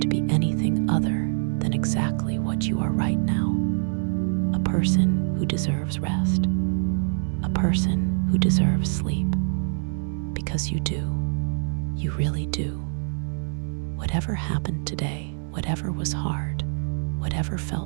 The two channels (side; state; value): left; silent; digital silence